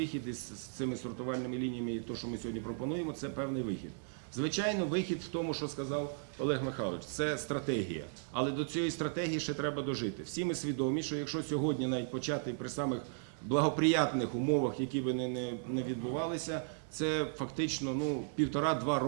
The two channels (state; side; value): silent; left; digital silence